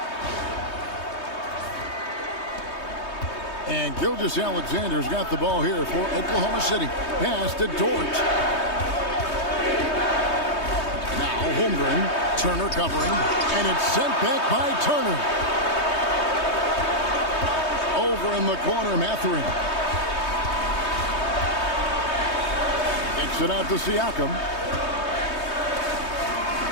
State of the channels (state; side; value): late; right; 3.2 ms